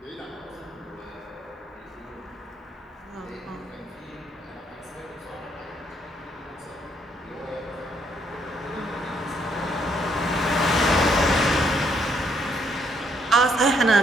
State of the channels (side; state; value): both; normal; correlation 0.71